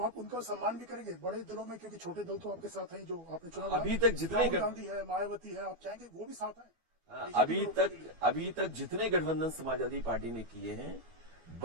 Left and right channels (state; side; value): late; left; 12 ms